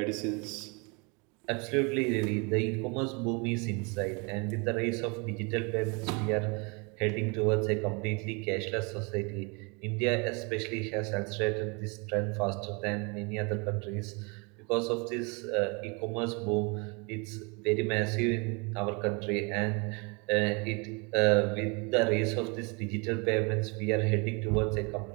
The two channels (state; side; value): quieter; left; 31.2 dB